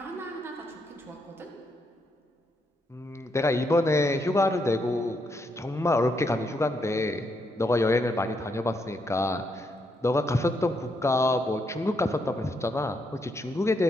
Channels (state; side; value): normal; both; correlation 0.78